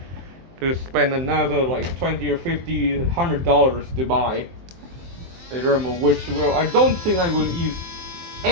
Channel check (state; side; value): late; left; 23 ms